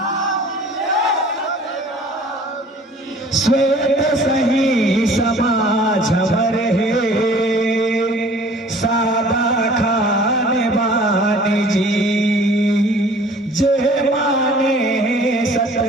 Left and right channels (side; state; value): both; normal; correlation 0.50